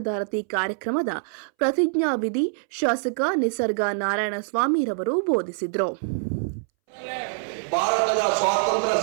ಕಾರ್ಯಕ್ರಮದ ಪ್ರತಿಜ್ಞಾವಿಧಿ ಶಾಸಕ ನಿಸರ್ಗ ನಾರಾಯಣಸ್ವಾಮಿರವರು ಬೋಧಿಸಿದರು. ಭಾರತದ ಸ್ವಾತಂತ್ರ್ಯ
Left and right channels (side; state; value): left; silent; 62 dB below the other